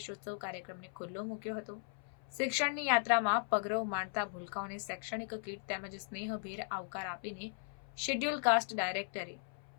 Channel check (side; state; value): right; silent; 53 dB below the other